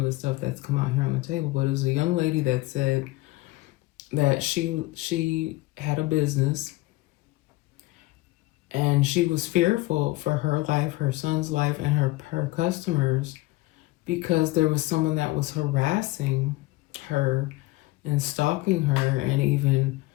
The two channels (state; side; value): quieter; right; 20.0 dB